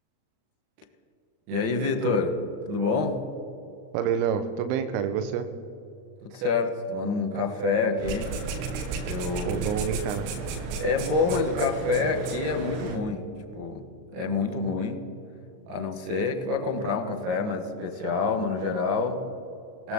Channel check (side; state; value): left; late; 39 ms